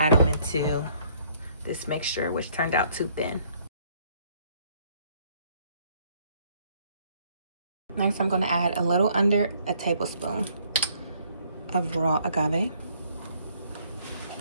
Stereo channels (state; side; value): inverted; both; correlation -0.64